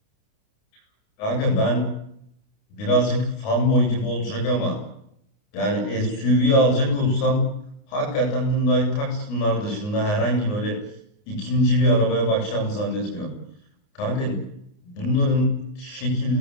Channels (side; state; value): right; late; 29 ms